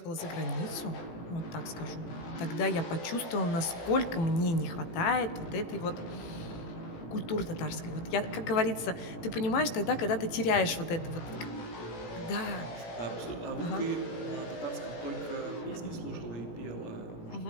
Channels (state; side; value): late; right; 18 ms